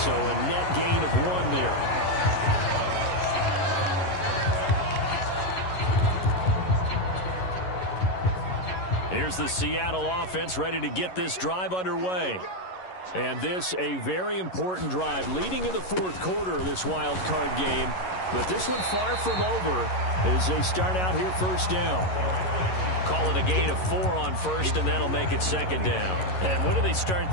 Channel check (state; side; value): late; right; 11 ms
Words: a net gain of 1 there. Here's the Seattle offense ready to get this drive underway. And this a very important drive leading in the fourth quarter of this wild card game. But this one far from over as they start out here first down. Call it a gain of 4 on first, and that'll make it second down. And when do they start